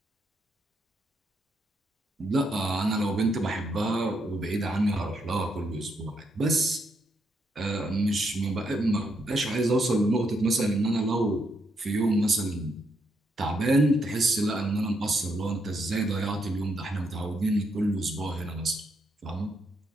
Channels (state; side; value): normal; both; correlation 0.77